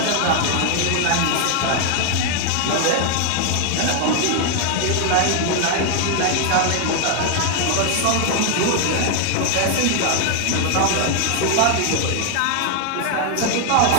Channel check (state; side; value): different; both; correlation 0.00